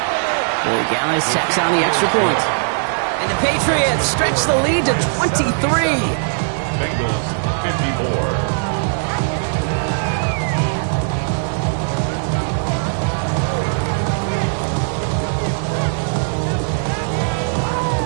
Gallis tacks on the extra point. And the Patriots stretch the lead to 23. Bengals 54.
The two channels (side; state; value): left; silent; 67 dB below the other